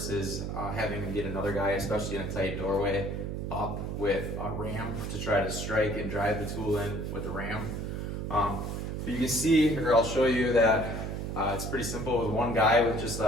having to get another guy, especially in a tight doorway, up with a ram to try to strike and drive the tool in with a ram. But you can see, or I'll show you that it's pretty simple with one guy with just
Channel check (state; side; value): noise; right; hum, 4 dB below the sound